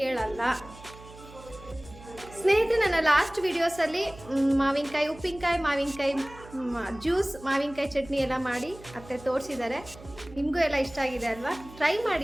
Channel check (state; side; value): noise; right; hum, 19 dB below the sound